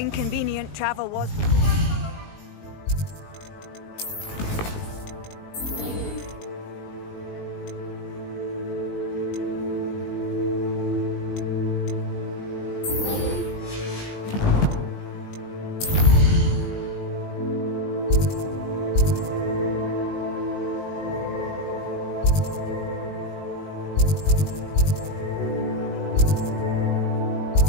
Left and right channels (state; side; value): late; right; 19 ms